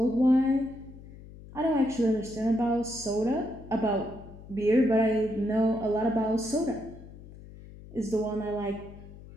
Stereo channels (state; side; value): noise; left; hum, 17 dB below the sound